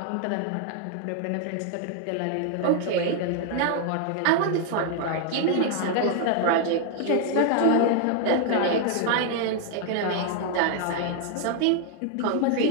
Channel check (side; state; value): both; different; correlation 0.00